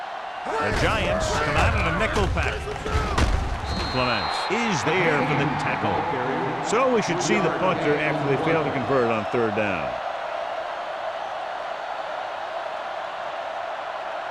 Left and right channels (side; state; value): both; identical; correlation 1.00